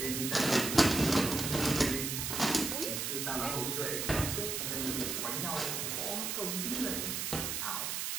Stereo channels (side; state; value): right; noise; hiss, 2 dB below the sound